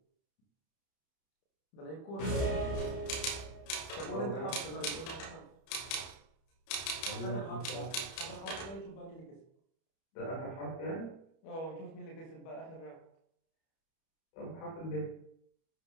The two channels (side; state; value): right; late; 31 ms